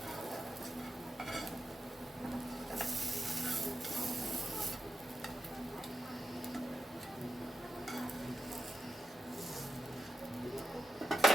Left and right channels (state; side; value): normal; both; correlation 0.89